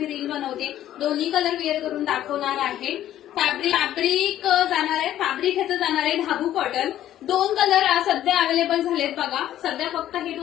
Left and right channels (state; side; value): quieter; right; 12.3 dB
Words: रील बनवते. दोन्ही कलर वेअर करून दाखवणार आहे. फॅब्रिक जाणार आहे, फॅब्रिक ह्याचं जाणार आहे धाबू कॉटन. 2 कलर सध्या अवेलेबल झालेत बघा. सध्या फक्त हे